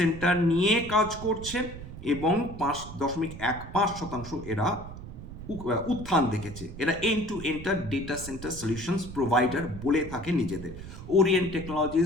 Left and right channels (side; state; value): right; noise; rumble, 12 dB below the sound